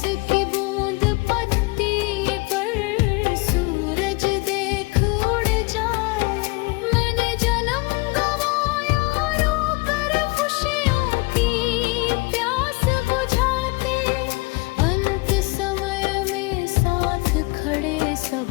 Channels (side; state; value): right; quieter; 25.6 dB